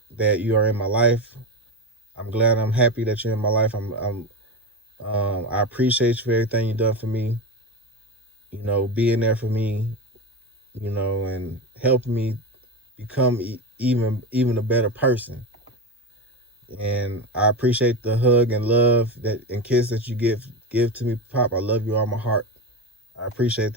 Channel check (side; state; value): both; normal; correlation 0.19